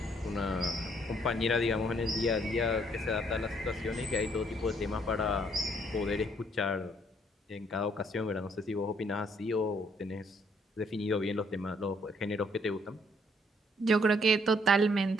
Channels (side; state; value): both; normal; correlation 0.67